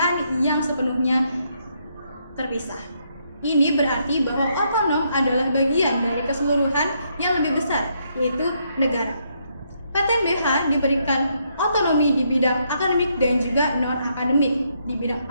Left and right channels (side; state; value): both; inverted; correlation -0.75